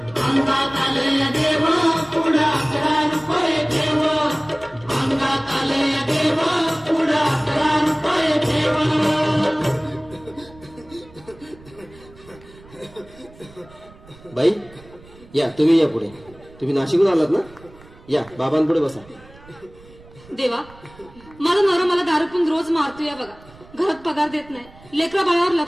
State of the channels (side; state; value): right; noise; rumble, 23 dB below the sound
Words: आलंय देव पुढं 11 रुपये ठेव अंगात आलंय देव पुढं 11 रुपये ठेव बाई या तुम्ही या पुढे तुम्ही नाशिकहून आलात ना या बाबांपुढे बसा देवा माझा नवरा मला दारू पिऊन रोज मारतोय बघा घरात पगार देत नाही लेकरा बाळावर